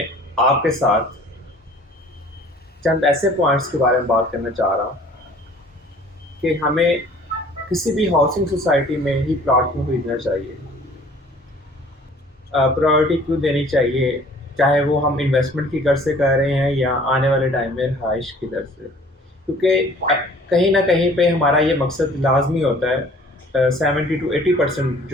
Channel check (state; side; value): normal; both; correlation 0.52